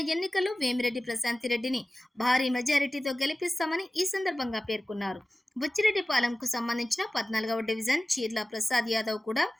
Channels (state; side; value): normal; both; correlation 0.96